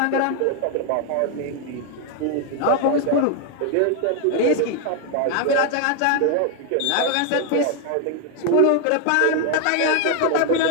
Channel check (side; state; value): both; different; correlation 0.01